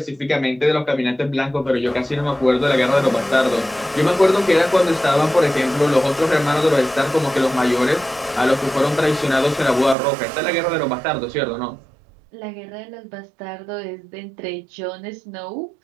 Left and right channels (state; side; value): drops out; left; at 10.0 s